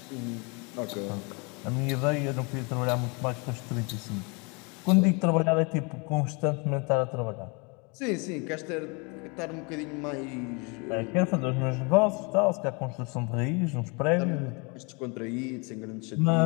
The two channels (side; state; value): right; quieter; 31.2 dB